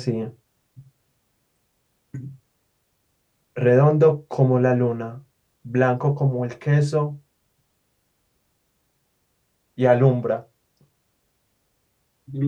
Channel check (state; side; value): identical; both; correlation 1.00